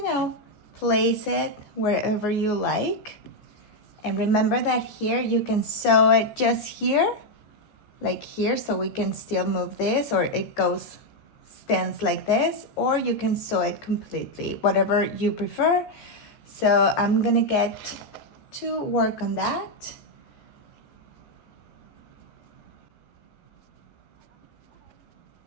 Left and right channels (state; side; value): late; right; 14 ms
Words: know, place it wherever you like. And remember that here you can sew it just here, like here, so we can still move this, or it goes, stands like this, or you can sew it completely, whatever you prefer. So I'm gonna get to work on that.